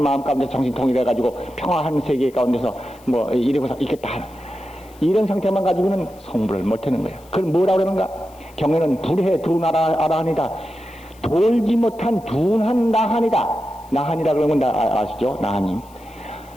마음 가운데 정신 통일해가지고 평화한 세계 가운데서 이러고서 있겠다. 이런 상태만 가지고는 성불을 못하는 거예요. 그걸 뭐라고 그러는가? 경에는 불해 두나라하니다. 돌지 못한 둔한 나한이다. 나한이라 그러면 아시죠? 나한님.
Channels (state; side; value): noise; left; hiss, 27 dB below the sound